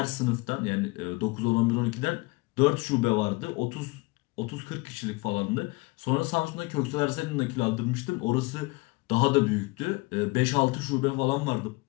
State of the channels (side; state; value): right; quieter; 25.1 dB